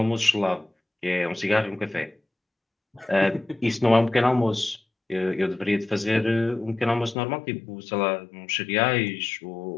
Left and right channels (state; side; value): drops out; right; at 7.2 s